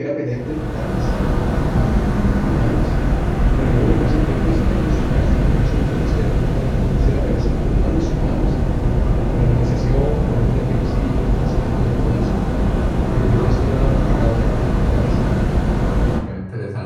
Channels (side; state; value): both; identical; correlation 1.00